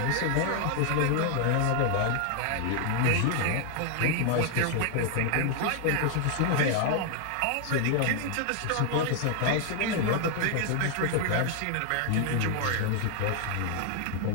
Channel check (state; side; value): different; both; correlation 0.00